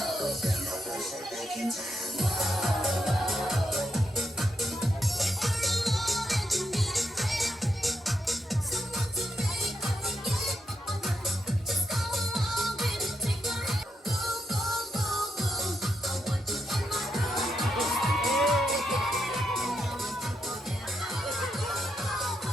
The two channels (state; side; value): normal; both; correlation 0.83